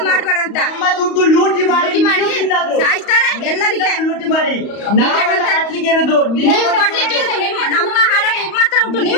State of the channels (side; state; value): right; late; 35 ms